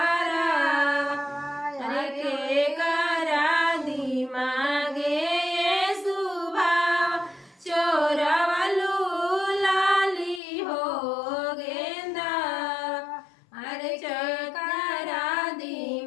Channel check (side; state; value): right; drops out; at 10.4 s